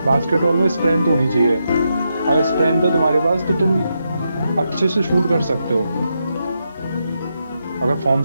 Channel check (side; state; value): both; inverted; correlation -0.84